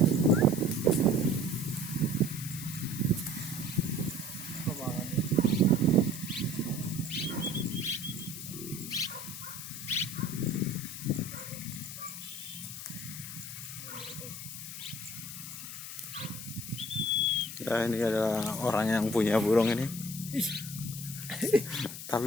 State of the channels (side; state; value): left; noise; hiss, 9 dB below the sound